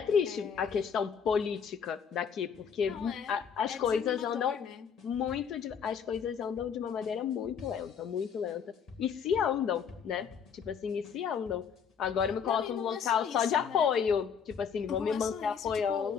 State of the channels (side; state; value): right; quieter; 7.1 dB